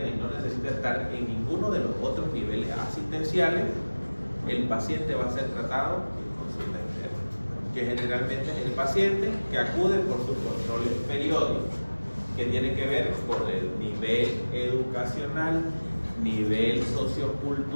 y no necesita estar en ninguno de los otros niveles asistenciales, el paciente va a ser tratado en consulta externa, que generalmente es el paciente que acude por sus controles periódicos, que tiene que ver con el nivel educacional, nivel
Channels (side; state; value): both; inverted; correlation -1.00